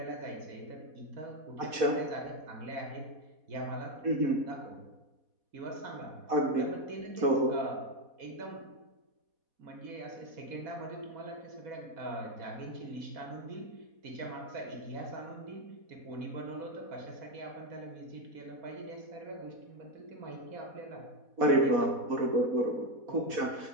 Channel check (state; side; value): late; left; 4.1 ms